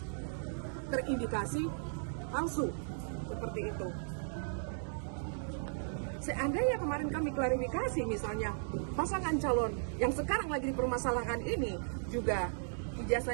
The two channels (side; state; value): left; silent; digital silence